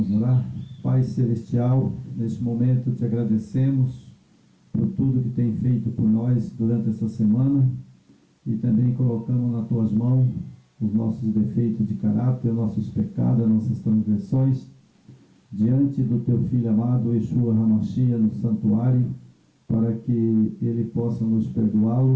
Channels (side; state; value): both; identical; correlation 1.00